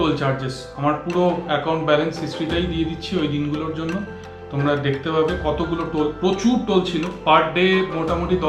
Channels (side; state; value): both; identical; correlation 1.00